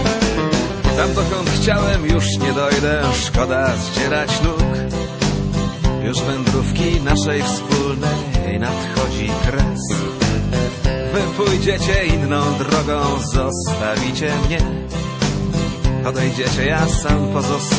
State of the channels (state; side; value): identical; both; correlation 1.00